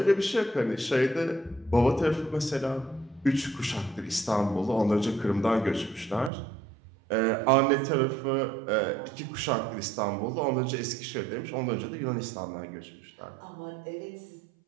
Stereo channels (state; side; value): drops out; left; at 6.3 s